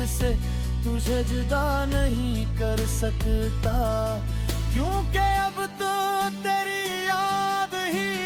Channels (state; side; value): identical; both; correlation 1.00